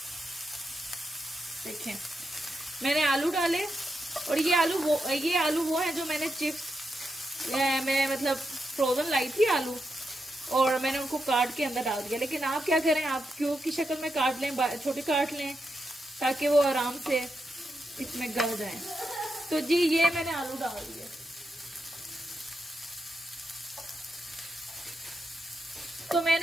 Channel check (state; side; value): normal; both; correlation 0.85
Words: देखें मैंने आलू डाले। और ये आलू वो है जो मैंने चिप्स मैं मतलब फ्रोजन लाई थी आलू, और मैंने उनको काट के अंदर डाल दिया। लेकिन आप क्या करें, आप क्यूब की शक्ल में काट लें, छोटे काट लें, ताकि वो आराम से इसमें गल जाए। तो जी ये मैंने आलू डाल दिए। तो